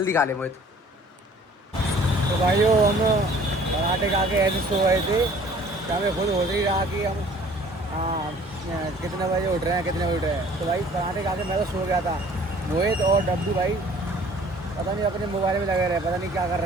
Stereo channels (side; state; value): both; normal; correlation 0.53